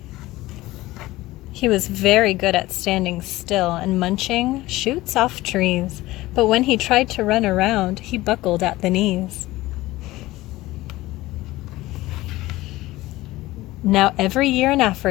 He was very good at standing still and munching shoots off trees, but when he tried to run around, he buckled at the knees. Now every year in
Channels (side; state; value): right; quieter; 18.0 dB